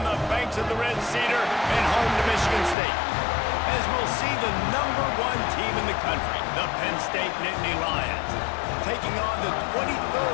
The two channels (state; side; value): drops out; right; at 2.8 s